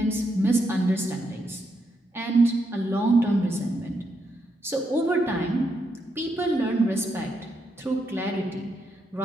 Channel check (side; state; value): both; normal; correlation 0.80